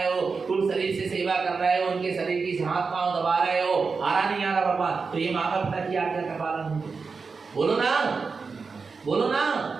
हो, तुम शरीर से सेवा कर रहे हो, उनके शरीर की हाथ पांव दबा रहे हो, आ रहा नहीं आ रहा भगवान? तो ये माता पिता की आज्ञा का पालन है। बोलो ना, बोलो ना।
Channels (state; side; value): quieter; left; 4.8 dB